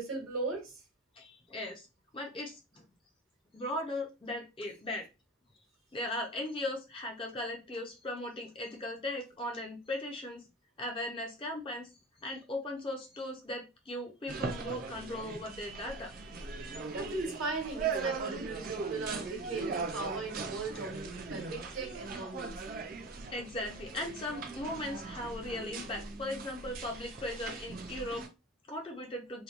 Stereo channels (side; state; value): both; normal; correlation 0.33